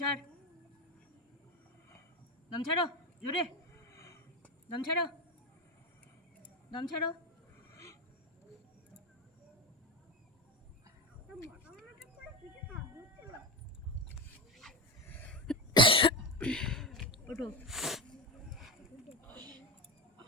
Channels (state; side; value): normal; both; correlation 0.17